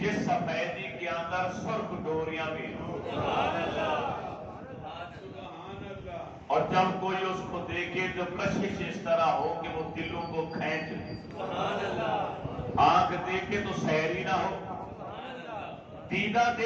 سفیدی کے اندر سرخ ڈوریاں بھی ہوں، اور جب کوئی اس کو دیکھے تو کشش اس طرح ہو کہ وہ دلوں کو کھینچ لے، آنکھ دیکھے تو سحری نہ ہو، دیدہ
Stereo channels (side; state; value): both; identical; correlation 1.00